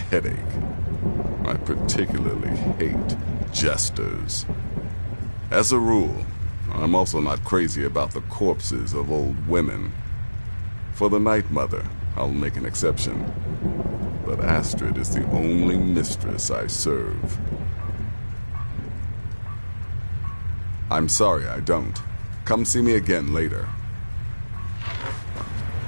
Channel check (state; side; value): inverted; both; correlation -1.00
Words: I particularly hate jesters. As a rule, I'm also not crazy about the corpses of old women. For the Night Mother, I'll make an exception. But Astrid is the only mistress I serve. I'm sorry I don't. Come see me again later.